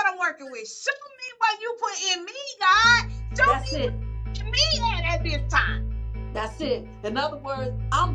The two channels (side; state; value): both; identical; correlation 1.00